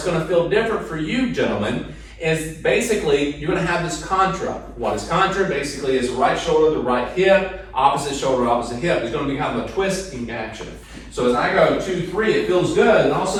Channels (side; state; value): both; identical; correlation 1.00